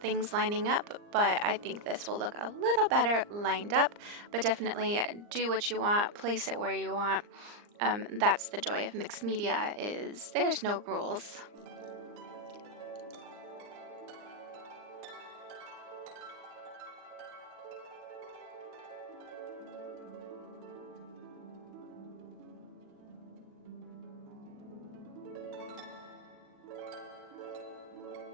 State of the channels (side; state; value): left; late; 39 ms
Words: things lining up, but I think this will look a little better lined up, but definitely do what you want, place it where you want. That's the joy of mixed media, is there's no rules.